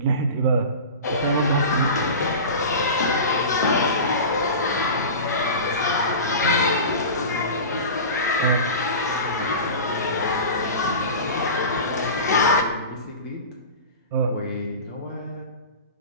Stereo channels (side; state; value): both; inverted; correlation -0.31